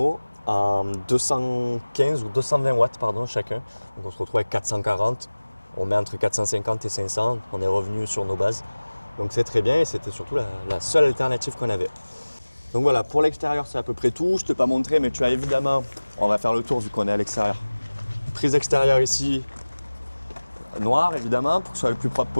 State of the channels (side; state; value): both; inverted; correlation -1.00